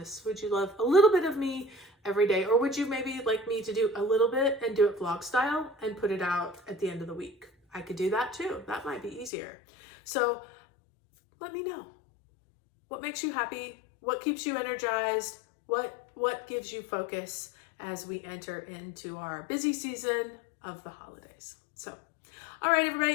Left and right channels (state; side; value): drops out; right; at 9.3 s